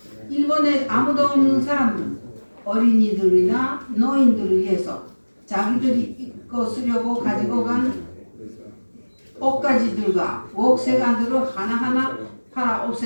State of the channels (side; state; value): both; inverted; correlation -1.00